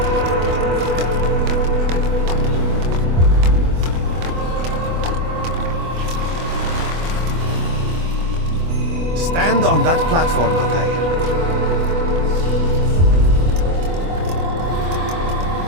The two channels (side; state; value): left; late; 24 ms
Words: Stand on that platform, Altair.